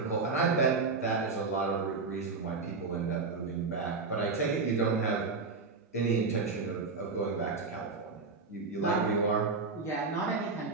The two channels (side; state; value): left; quieter; 4.3 dB